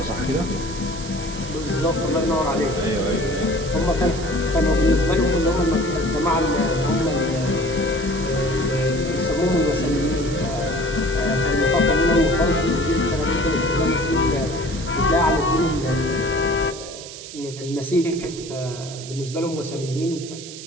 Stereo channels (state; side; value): noise; right; hiss, 13 dB below the sound